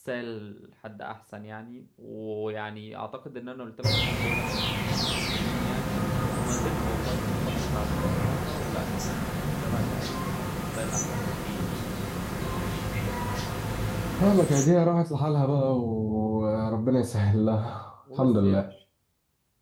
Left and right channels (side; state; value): both; identical; correlation 1.00